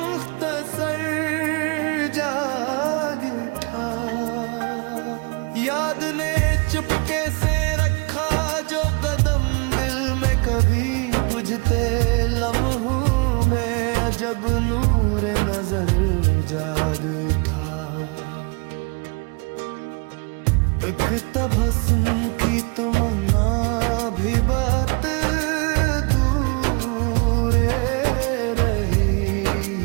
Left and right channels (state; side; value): quieter; left; 31.8 dB